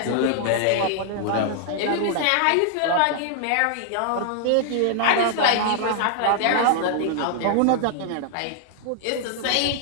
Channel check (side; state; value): both; different; correlation -0.01